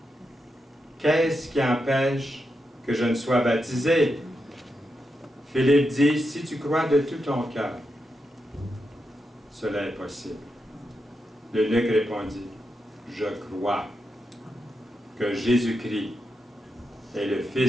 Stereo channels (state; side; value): normal; both; correlation 0.86